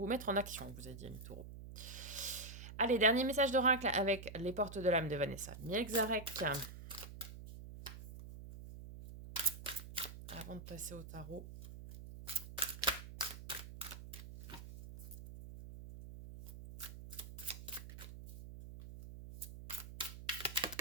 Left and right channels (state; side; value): noise; right; hum, 12 dB below the sound